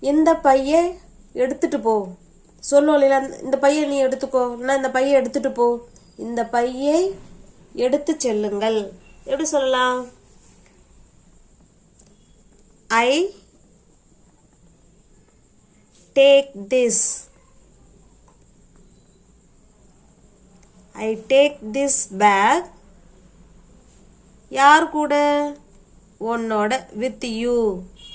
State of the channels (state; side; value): identical; both; correlation 1.00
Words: இந்த பையை எடுத்துட்டு போ சொல்லுவோம் இல்லையா, இந்த பையை நீ எடுத்துக்கோ, நான் இந்த பையை எடுத்துட்டு போ. இந்த பையை எடுத்து செல்லுங்கள். எப்படி சொல்லலாம்? I take this. I take this bag. யார் கூட? உன்னோட, with you.